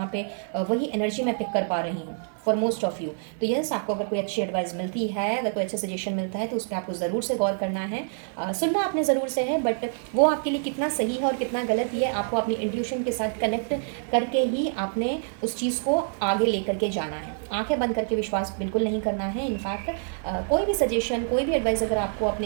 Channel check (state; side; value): silent; left; digital silence